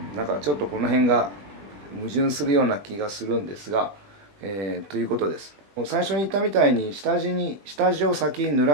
なんかちょっとこの辺が矛盾するような気がするんですが、ということです。最初に言ったみたいに下地を先に濡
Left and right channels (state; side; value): late; left; 20 ms